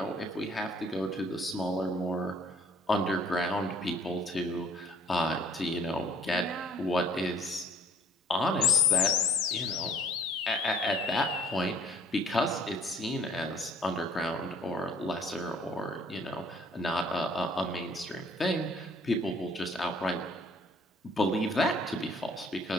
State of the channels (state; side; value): normal; both; correlation 0.55